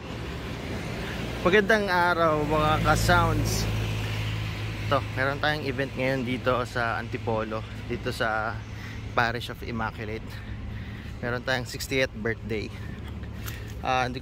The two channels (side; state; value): both; identical; correlation 1.00